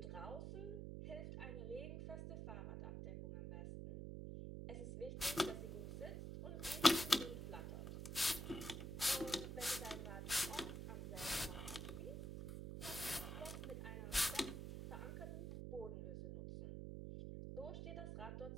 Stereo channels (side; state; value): right; noise; hum, 6 dB below the sound